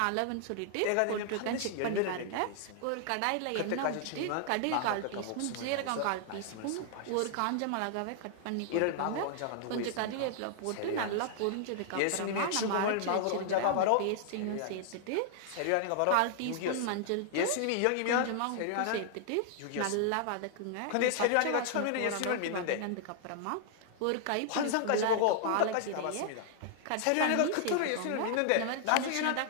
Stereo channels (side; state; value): both; different; correlation -0.01